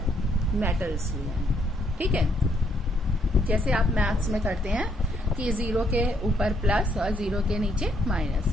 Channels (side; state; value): both; normal; correlation 0.72